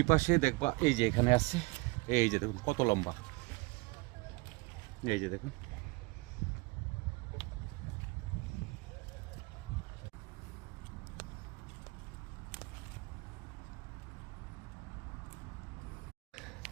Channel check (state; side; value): quieter; left; 25.3 dB